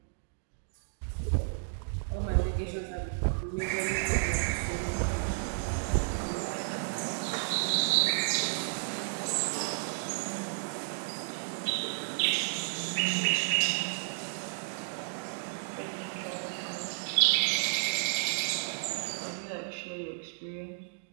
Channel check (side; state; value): left; silent; digital silence